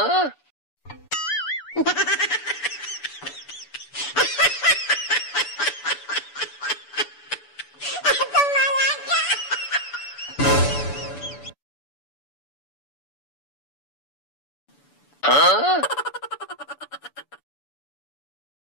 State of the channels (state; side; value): late; right; 6.9 ms